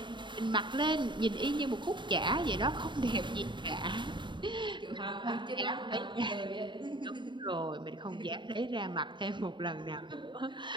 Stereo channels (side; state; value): left; late; 0.23 ms